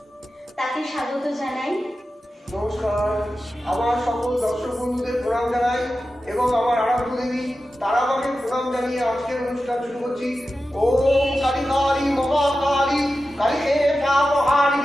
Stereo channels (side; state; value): both; normal; correlation 0.93